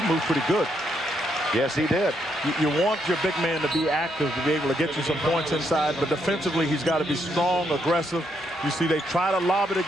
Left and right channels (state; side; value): normal; both; correlation 0.76